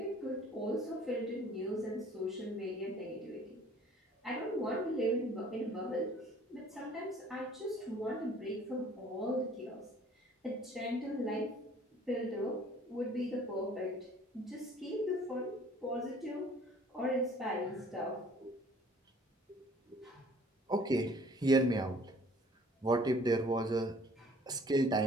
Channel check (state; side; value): normal; both; correlation 0.54